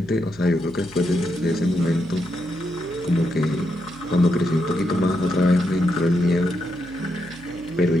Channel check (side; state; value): right; noise; hum, 21 dB below the sound